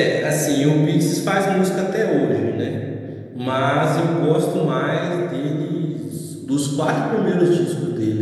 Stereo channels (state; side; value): identical; both; correlation 1.00